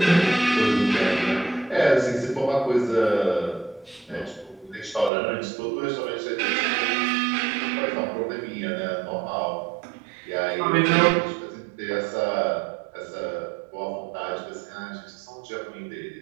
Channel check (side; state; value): left; drops out; at 5.1 s